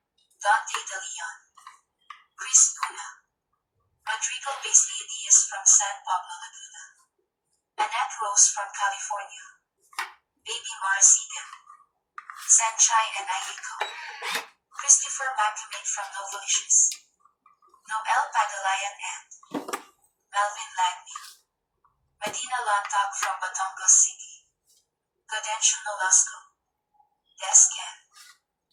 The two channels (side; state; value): both; identical; correlation 1.00